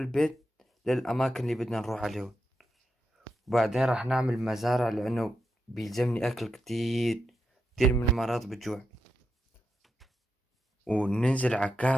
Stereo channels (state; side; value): normal; both; correlation 0.86